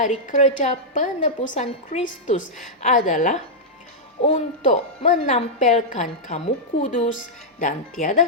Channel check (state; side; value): normal; both; correlation -0.07